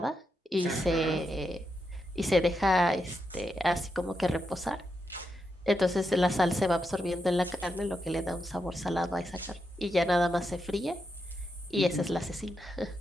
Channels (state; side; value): normal; both; correlation 0.84